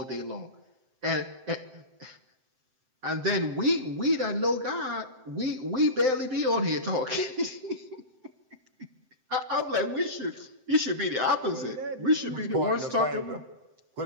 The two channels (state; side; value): late; left; 7.7 ms